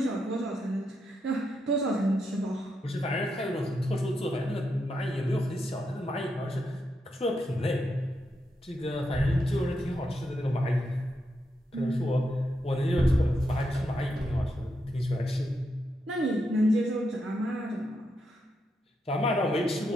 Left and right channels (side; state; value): both; normal; correlation 0.83